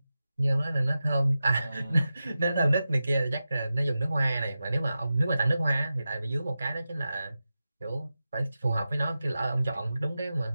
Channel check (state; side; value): inverted; both; correlation -0.92